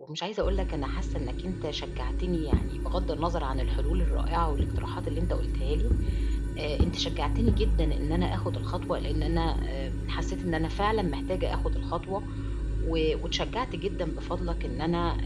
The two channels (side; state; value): both; identical; correlation 1.00